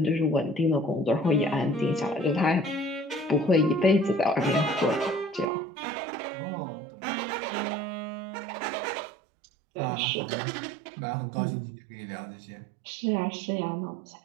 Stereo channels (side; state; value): left; drops out; at 5.5 s